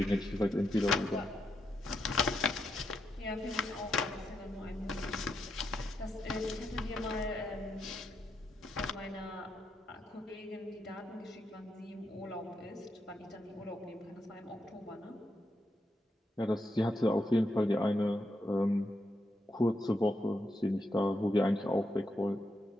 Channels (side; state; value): both; normal; correlation 0.82